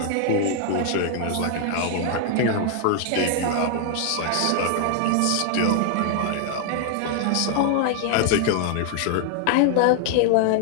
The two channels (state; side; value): different; both; correlation 0.00